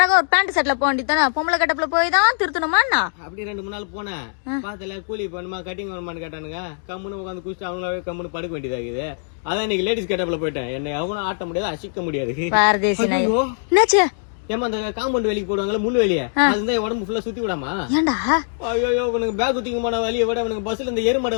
ஒரு பேண்ட் செட்ல போக வேண்டியதானே. பொம்பளை கட்டப்புல போய் தான் திருத்தணுமாண்ணா. அப்படி 2-3 நாள் போனேன். பாத்துல கூலி பண்ணுமா கட்டிங் பண்ணுமான்னு கேட்டானுங்க. கம்முன்னு உட்காந்து குடிச்சு அவங்களாவே கம்முன்னு படுக்க வேண்டியதாகுது. அதான் இன்னைக்கு லேடிஸ் கட்டப்புல போயிட்டேன். என்னை எவனும் ஆட்ட முடியாது, அசிக்க முடியாது. பாரதேசி நாய். என்னாச்சு? ஏமா அந்த காம்பவுண்ட் வேலைக்கு போடுவாங்கல்ல முள்ளு வெளியே, அதுதான் உடம்பு ஃபுல்லா சுத்தி விடாமா. ஏண்டா ஐயோ இவனுக்கு பேக் தூக்கமான வலியை விட இவனுக்கு பஸ்ல இந்த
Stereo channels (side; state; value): right; silent; digital silence